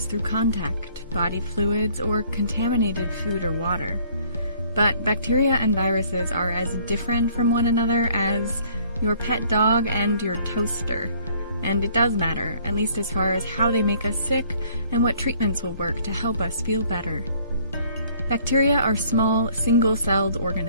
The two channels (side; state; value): both; inverted; correlation -0.59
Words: through contact, body fluids, or contaminated food or water. But bacteria and viruses are as different from one another as your pet dog and your toaster. And it does matter, at least as far as how they make us sick and what treatments will work to help us feel better. Bacteria are small, single-celled